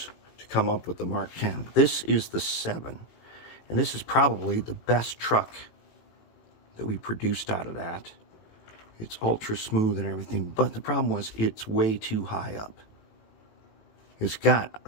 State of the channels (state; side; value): late; right; 18 ms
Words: to come up with the Mark 10. This is the 7, and this is probably the best truck that we produced out of that. It's ultra smooth and everything, but the problem was it's way too high up. It's got